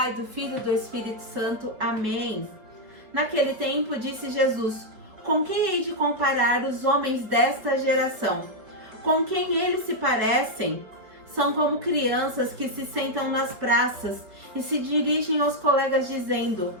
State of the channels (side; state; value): left; late; 4.8 ms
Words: do Filho e do Espírito Santo. Amém. Naquele tempo, disse Jesus: com quem hei de comparar os homens desta geração? Com quem eles se parecem? São como crianças que se sentam nas praças e se dirigem aos colegas dizendo: